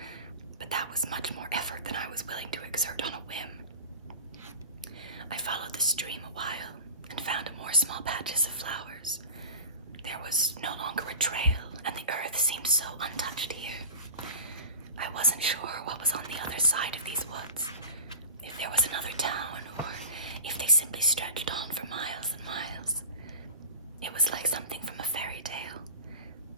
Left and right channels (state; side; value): inverted; both; correlation -0.34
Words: but that was much more effort than I was willing to exert on a whim. I followed the stream a while and found more small patches of flowers. There was no longer a trail, and the earth seemed so untouched here. I wasn't sure what was on the other side of these woods, if there was another town, or if they simply stretched on for miles and miles. It was like something from a fairy tale.